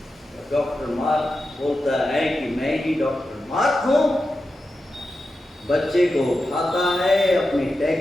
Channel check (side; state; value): both; normal; correlation 0.90